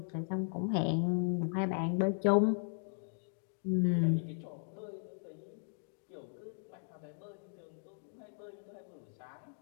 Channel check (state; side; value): silent; right; digital silence